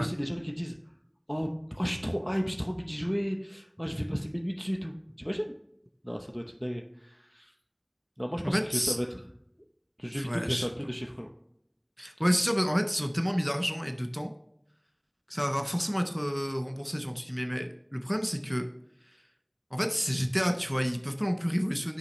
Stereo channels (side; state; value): both; identical; correlation 1.00